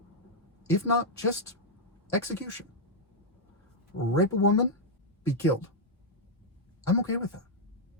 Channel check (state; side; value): normal; both; correlation -0.04